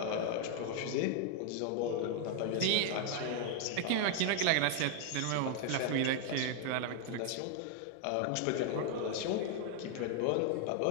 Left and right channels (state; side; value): different; both; correlation 0.00